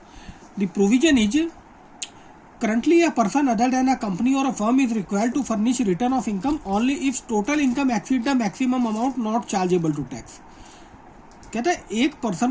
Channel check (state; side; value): identical; both; correlation 1.00